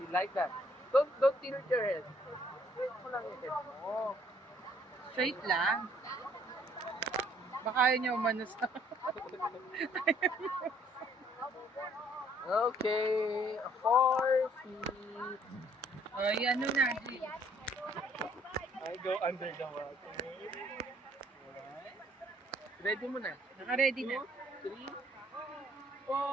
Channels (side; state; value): both; normal; correlation 0.63